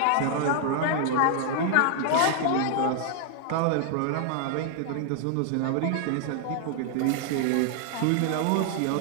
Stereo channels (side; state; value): both; different; correlation 0.00